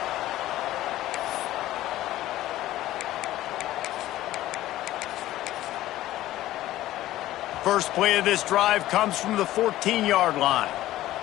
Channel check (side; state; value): right; quieter; 15.0 dB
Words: First play of this drive comes from the 14-yard line.